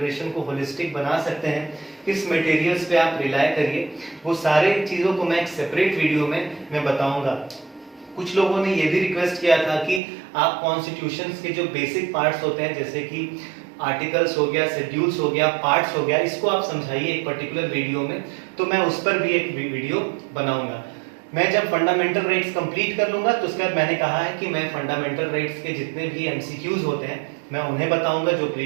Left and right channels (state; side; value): drops out; left; at 10.0 s